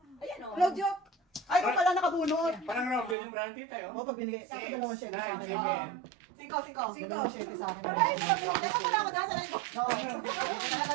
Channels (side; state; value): left; drops out; at 3.2 s